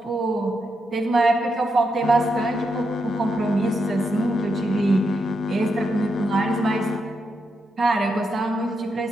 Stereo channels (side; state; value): both; normal; correlation 0.83